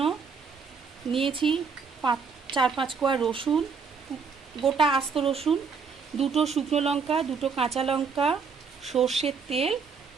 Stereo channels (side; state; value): left; quieter; 5.5 dB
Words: নিয়েছি 4-5 কোয়া রসুন, গোটা আস্ত রসুন, দুটো শুকনো লঙ্কা, দুটো কাঁচা লঙ্কা, সর্ষের তেল